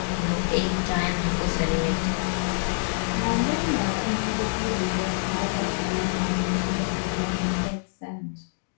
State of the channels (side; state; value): right; silent; 59 dB below the other